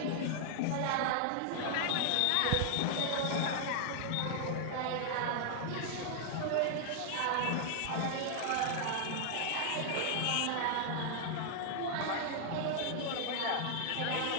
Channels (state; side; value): different; both; correlation -0.01